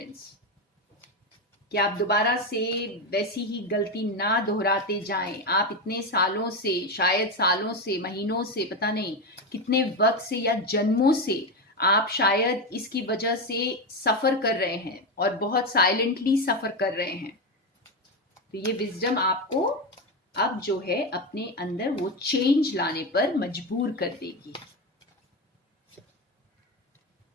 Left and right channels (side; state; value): both; normal; correlation 0.14